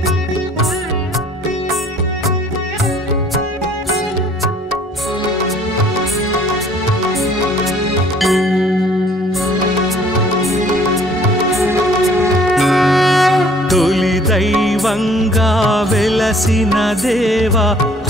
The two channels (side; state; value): both; normal; correlation 0.56